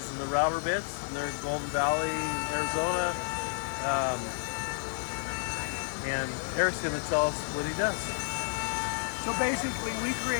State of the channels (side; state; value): right; silent; digital silence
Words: and the router bits. And they're in Golden Valley, Arizona. And Eric's going to tell us what he does. So basically, we